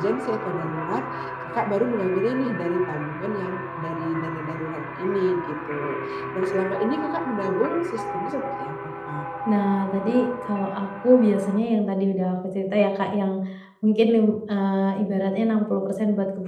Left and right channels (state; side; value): identical; both; correlation 1.00